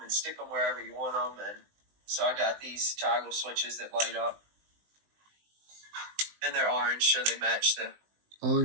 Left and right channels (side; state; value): left; late; 19 ms